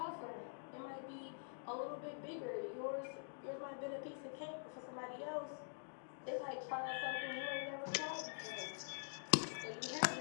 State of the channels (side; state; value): right; silent; digital silence